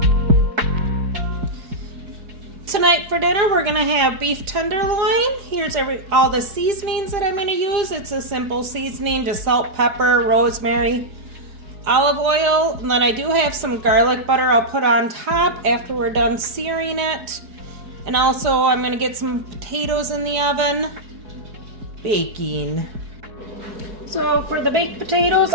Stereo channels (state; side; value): late; left; 4.9 ms